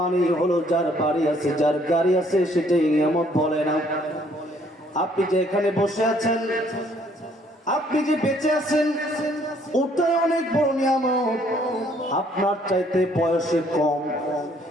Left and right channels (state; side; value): normal; both; correlation 0.64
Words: হলো যার বাড়ি আছে, যার গাড়ি আছে, সেটাই নিয়ামত বলে না। আপনি যে এখানে বসে আছেন, আপনি যে বেঁচে আছেন, ওটাই অনেক বড় নিয়ামত। আপনার চাইতে বয়সে কম